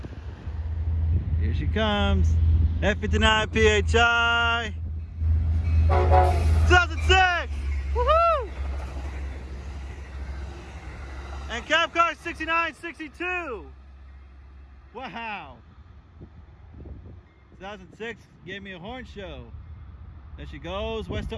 Here she comes. F59 PHI 2006. Woohoo! And Cabcar 6962. Wow. 2006 gave me a horn show. There she goes, west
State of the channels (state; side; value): identical; both; correlation 1.00